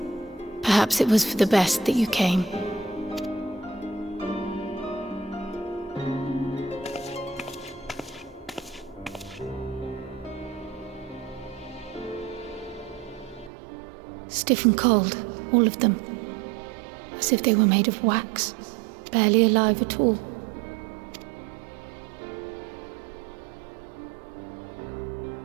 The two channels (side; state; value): left; drops out; at 13.5 s